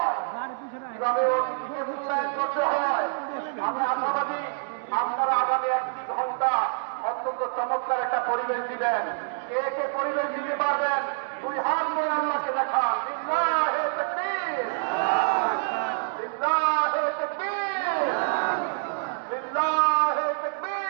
কিভাবে অতিথিকে মূল্যায়ন করতে হয়। আমি আশাবাদী আপনারা আগামী 1 ঘন্টা অত্যন্ত চমৎকার একটা পরিবেশ দিবেন। কে কে পরিবেশ দিতে পারবেন? 2 হাত নিয়ে আল্লাহকে দেখান। লিল্লাহে তাকবীর, লিল্লাহে তাকবীর, লিল্লাহে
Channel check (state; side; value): silent; left; digital silence